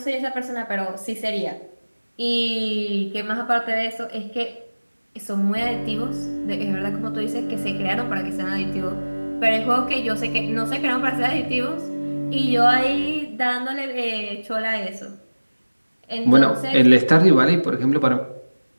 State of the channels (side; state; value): both; inverted; correlation -1.00